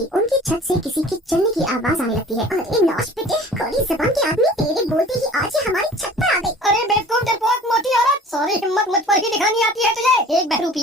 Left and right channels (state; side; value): normal; both; correlation 0.45